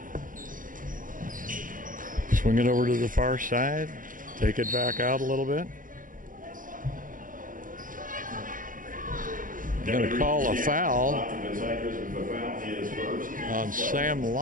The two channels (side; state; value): left; late; 0.39 ms